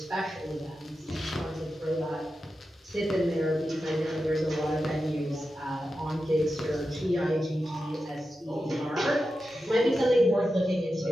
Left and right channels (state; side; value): normal; both; correlation 0.91